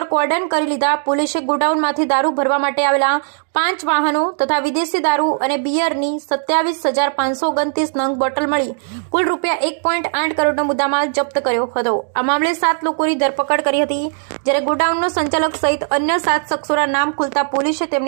કોર્ડન કરી લીધા. પોલીસે ગોડાઉનમાંથી દારૂ ભરવા માટે આવેલા 5 વાહનો તથા વિદેશી દારૂ અને બિયરની 27,529 નંગ બોટલ મળી કુલ ₹1.8 કરોડનો મુદ્દામાલ જપ્ત કર્યો હતો. આ મામલે 7 લોકોની ધરપકડ કરી હતી, જ્યારે ગોડાઉનનો સંચાલક સહિત અન્ય 7 શખ્સોના નામ ખુલતા પોલીસે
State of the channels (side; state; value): left; silent; digital silence